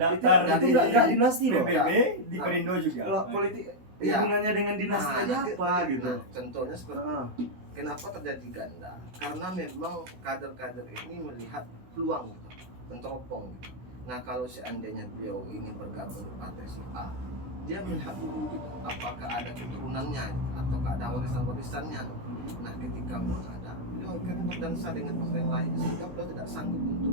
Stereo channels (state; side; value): late; left; 16 ms